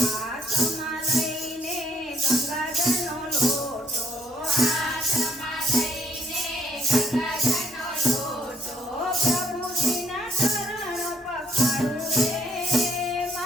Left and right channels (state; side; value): normal; both; correlation 0.68